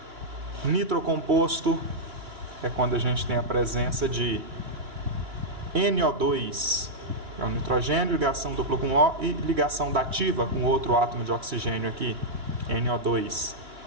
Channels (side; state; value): left; late; 2.9 ms